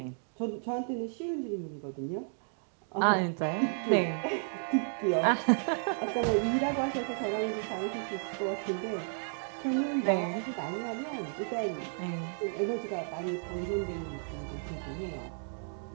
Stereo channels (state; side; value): silent; left; 56 dB below the other